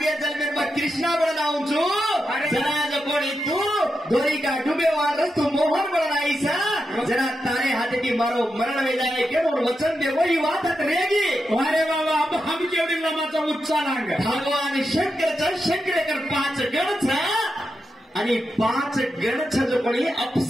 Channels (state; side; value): normal; both; correlation 0.87